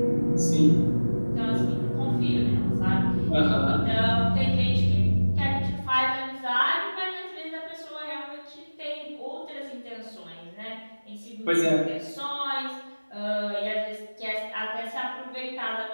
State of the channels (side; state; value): both; inverted; correlation -1.00